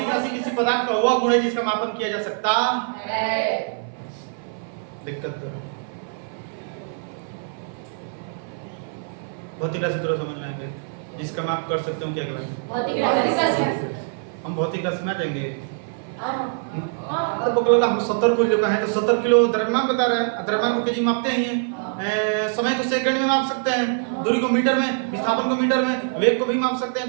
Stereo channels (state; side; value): silent; left; 56 dB below the other